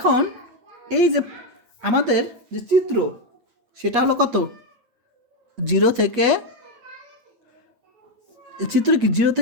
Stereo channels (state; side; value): late; left; 8.4 ms